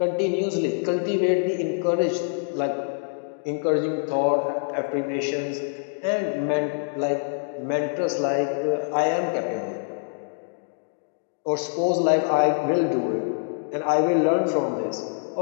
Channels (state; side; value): silent; right; digital silence